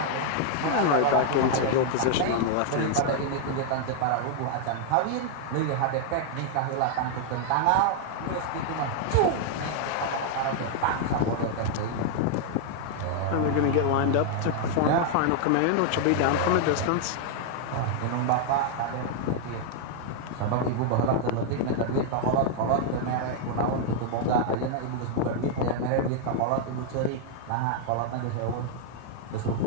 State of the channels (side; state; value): both; different; correlation 0.00